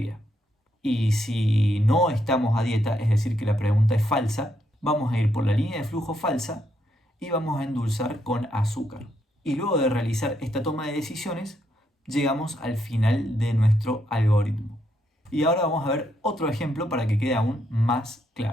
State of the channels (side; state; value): both; normal; correlation 0.77